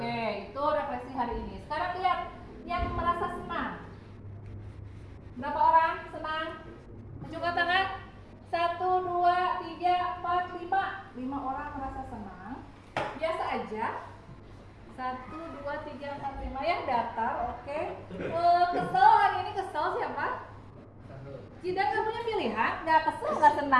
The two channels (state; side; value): identical; both; correlation 1.00